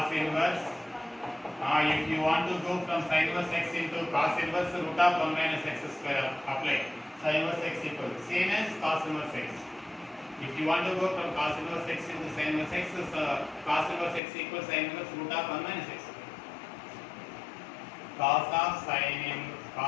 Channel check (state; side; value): drops out; right; at 14.2 s